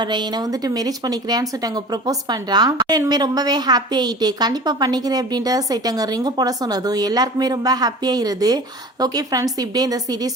என்னை வந்துட்டு மேரேஜ் பண்ணிக்கிறேன்னு சொல்லிட்டு அங்கே ப்ரப்போஸ் பண்ணுறான். இனிமேல் ரொம்பவே ஹாப்பி ஆகிட்டு கண்டிப்பாக பண்ணிக்கிறேன் அப்படின்றத சொல்லிட்டு அங்கே ரிங்கு போட சொன்னதும் எல்லாருக்குமே ரொம்ப ஹாப்பியாகிருது. ஓகே ஃப்ரெண்ட்ஸ், இப்படியே இந்த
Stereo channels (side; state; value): both; normal; correlation 0.39